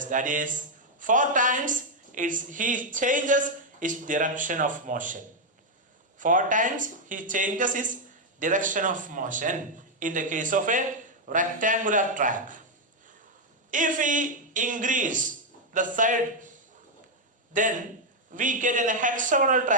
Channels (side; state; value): both; normal; correlation 0.01